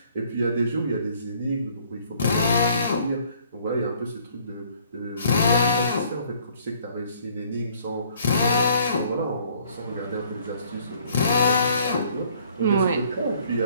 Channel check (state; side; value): inverted; both; correlation -0.60